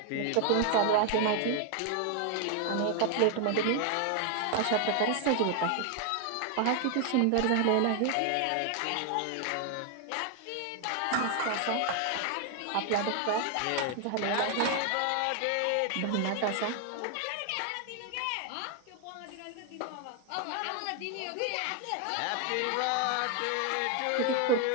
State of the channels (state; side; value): different; both; correlation 0.00